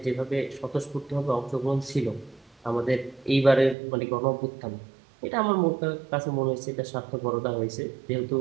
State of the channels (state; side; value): drops out; left; at 3.8 s